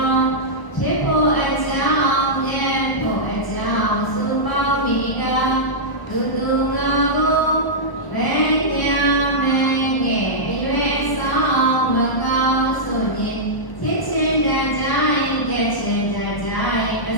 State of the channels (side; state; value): right; late; 1.0 ms